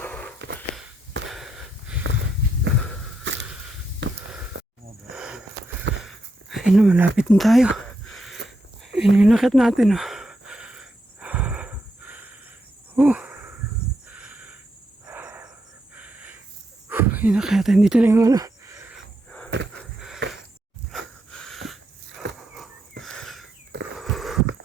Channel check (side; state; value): both; normal; correlation 0.81